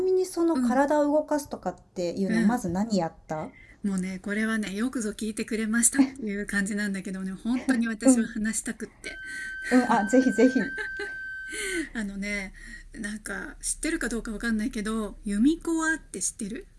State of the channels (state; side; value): identical; both; correlation 1.00